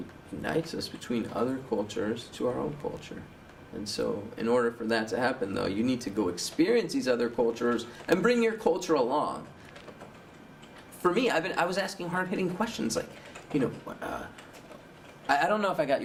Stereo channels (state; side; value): identical; both; correlation 1.00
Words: unites us between other cultures to our own culture. And so, in order for that to happen, though, you need to go experience these other cultures and bring your culture along. For me, I was asking hard-hitting questions like, I don't know if I got